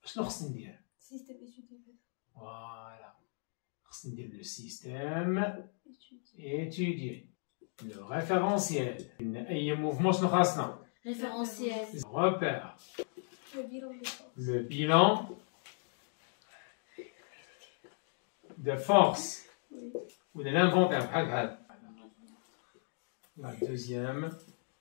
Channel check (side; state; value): right; silent; 54 dB below the other